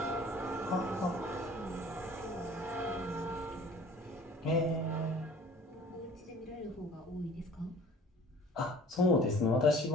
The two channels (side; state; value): both; normal; correlation 0.48